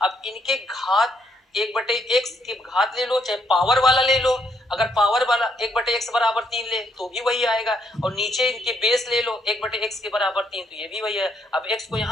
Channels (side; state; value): both; normal; correlation 0.74